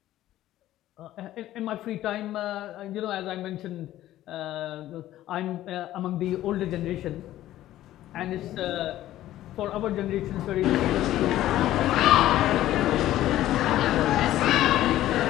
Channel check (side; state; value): right; quieter; 14.0 dB